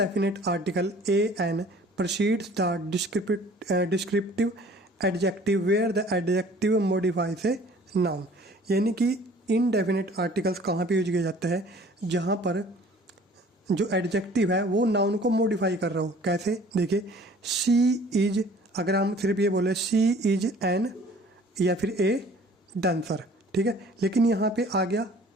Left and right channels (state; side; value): normal; both; correlation 0.51